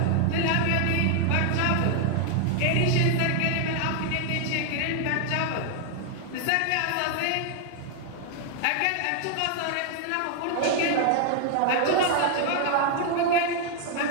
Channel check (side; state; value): both; different; correlation 0.00